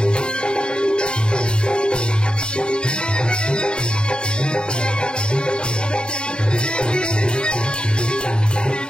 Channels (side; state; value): right; late; 0.050 ms